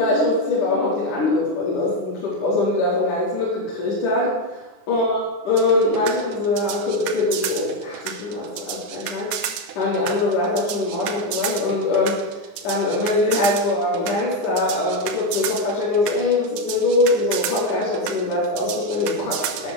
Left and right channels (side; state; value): right; late; 9.7 ms